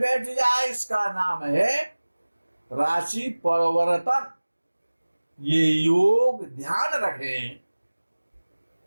बैठ जाए, इसका नाम है राशि परिवर्तन। ये योग ध्यान रखें,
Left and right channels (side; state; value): both; inverted; correlation -1.00